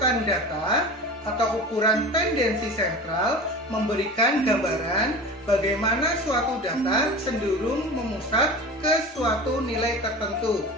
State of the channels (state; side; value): normal; both; correlation 0.34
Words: data atau ukuran tendensi sentral memberikan gambaran bagaimana suatu data cenderung memusat ke suatu nilai tertentu.